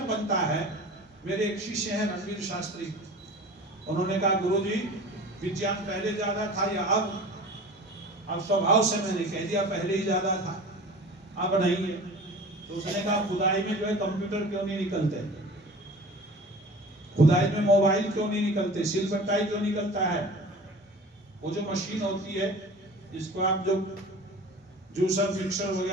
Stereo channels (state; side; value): normal; both; correlation 0.40